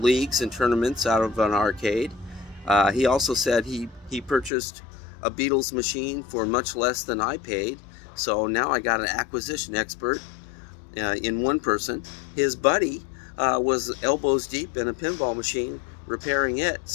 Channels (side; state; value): right; drops out; at 4.5 s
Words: leagues and tournaments out of an arcade. He also said he purchased a Beatles machine for much less than I paid, so now I got an acquisition expert in one person. His buddy was elbows deep in a pinball machine repairing it,